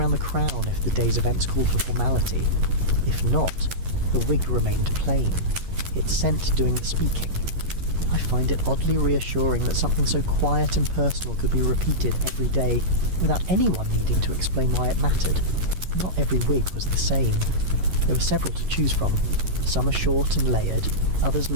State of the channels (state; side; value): late; left; 11 ms